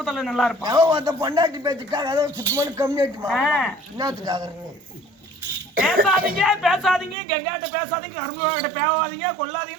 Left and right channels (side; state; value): left; drops out; at 7.2 s